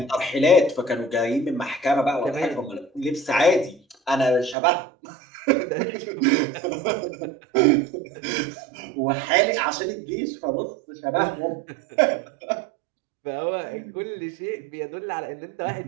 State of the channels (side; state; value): left; drops out; at 4.5 s